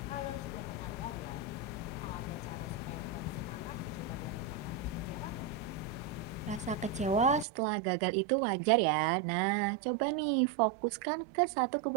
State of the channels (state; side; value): drops out; left; at 7.5 s